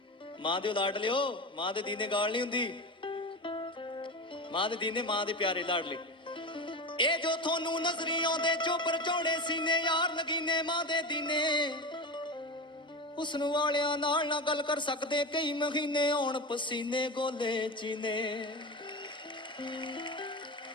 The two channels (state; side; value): normal; both; correlation 0.24